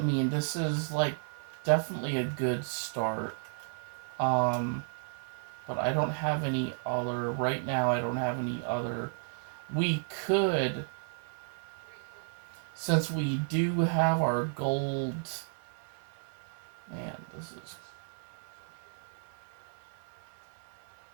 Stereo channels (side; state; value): left; silent; 56 dB below the other